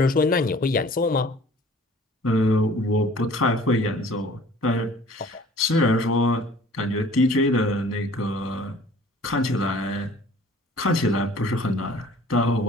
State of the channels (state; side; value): normal; both; correlation 0.50